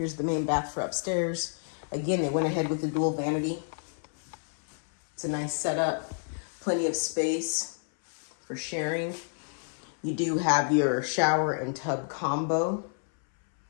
the main bath for upstairs. Again, they went ahead with the dual vanity. It's a nice setup. Plenty of space for sharing. You do have your shower and tub combo.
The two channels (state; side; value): silent; right; 58 dB below the other